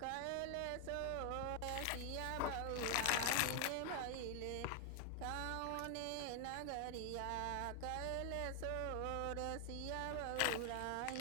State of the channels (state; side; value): different; both; correlation 0.01